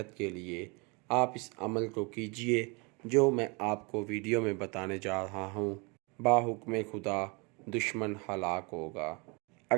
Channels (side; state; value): left; quieter; 29.9 dB